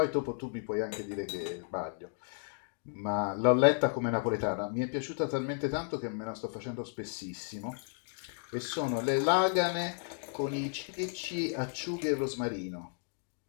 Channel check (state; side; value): silent; right; 55 dB below the other